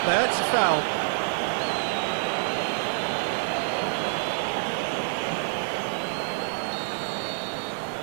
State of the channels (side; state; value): left; silent; 60 dB below the other